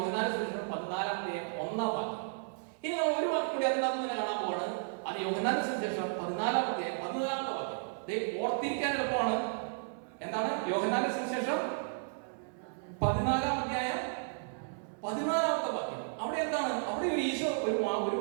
സുവിശേഷം 14-1 വാക്യം. ഇനി നമ്മൾ ഒരു വാക്യം കൂടി അതിനകത്ത് തന്നെ കാണാൻ പോവാണ്. അത് യോഹന്നാന്റെ സുവിശേഷം 14-14 വാക്യം. ഓർത്തിരിക്കാൻ എളുപ്പമാണ്. എന്താണ് യോഹന്നാന്റെ സുവിശേഷം 14-14 വാക്യം. അവിടെ എന്താണ്? അവിടെ ഈശോ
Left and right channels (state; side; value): silent; left; 55 dB below the other